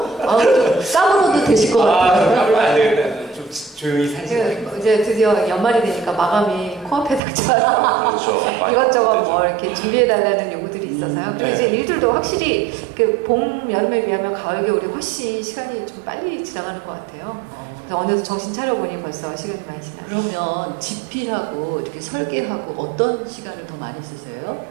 까불어도 되실 것 같아요. 까불면 안 되겠다. 좀 조용히 살자. 이제 드디어 연말이 되니까 마감이 코앞에 닥쳐요. 그렇죠. 이것저것 뭐 이렇게 준비해달라는 요구들이 있어서요. 그리고 이제 일들도 확실히 그 봄, 여름에 비하면 가을, 겨울이 훨씬 시간이 좀 빨리 지나가는 것 같아요. 그래서 어느새 정신 차려보니 벌써 시간이 많이 지나요. 그러면 집필하고 이렇게 설계하고 어떤 시간을 더 많이 쓰세요?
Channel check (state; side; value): drops out; left; at 7.2 s